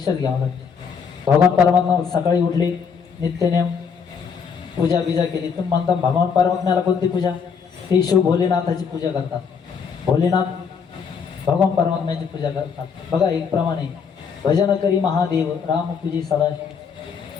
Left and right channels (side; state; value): right; quieter; 6.3 dB